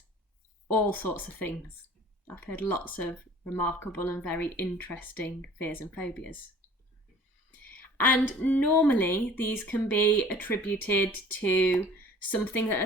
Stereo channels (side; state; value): both; normal; correlation 0.48